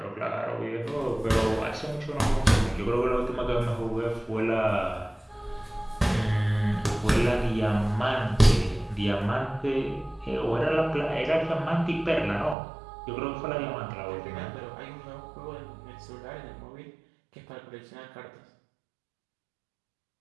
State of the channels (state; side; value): drops out; left; at 12.6 s